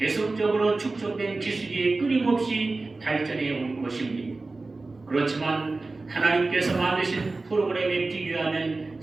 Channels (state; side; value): quieter; left; 3.5 dB